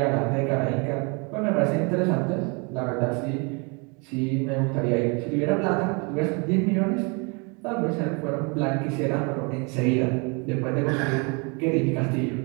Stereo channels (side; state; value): left; quieter; 32.1 dB